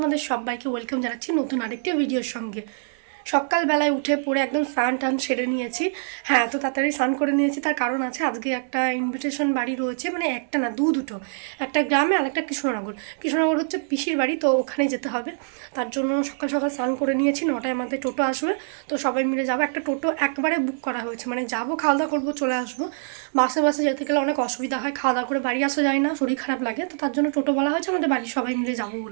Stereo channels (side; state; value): left; silent; digital silence